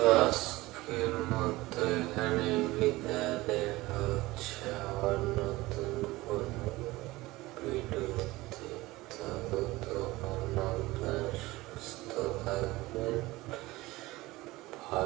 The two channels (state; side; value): quieter; left; 19.6 dB